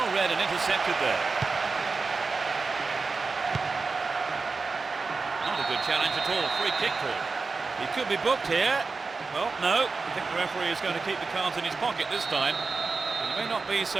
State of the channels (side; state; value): left; quieter; 4.2 dB